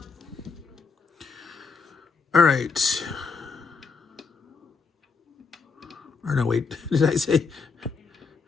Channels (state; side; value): quieter; right; 4.9 dB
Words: All right. Or no, wait. Did I say?